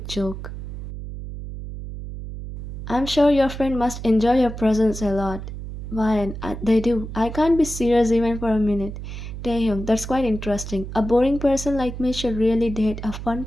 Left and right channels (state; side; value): noise; right; hum, 9 dB below the sound